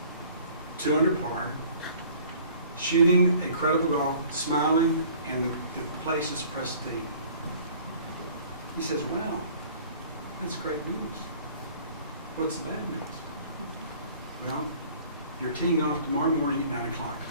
2 under par, shooting incredible golf, smiling, and the place is pristine. He says, wow, that's great news. What's the bad news? Well, you're teeing off tomorrow morning at 9 o'clock.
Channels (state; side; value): inverted; both; correlation -0.52